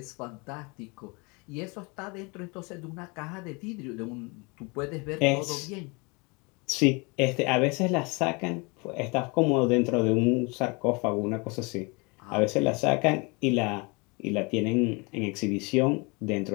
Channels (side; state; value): right; quieter; 29.1 dB